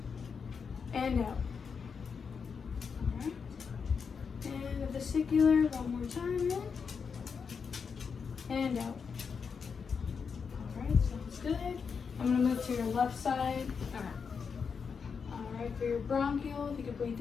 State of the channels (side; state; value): right; quieter; 5.9 dB